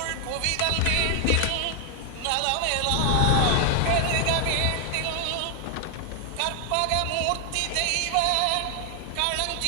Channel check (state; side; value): different; both; correlation 0.00